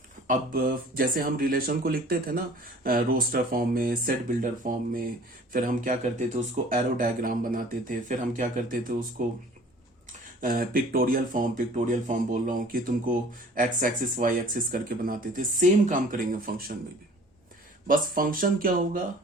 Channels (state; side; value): normal; both; correlation 0.49